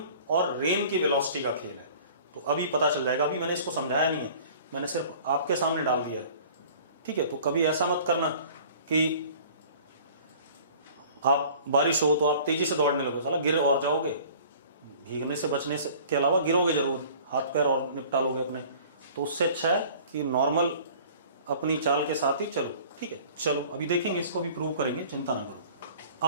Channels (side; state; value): both; inverted; correlation -0.48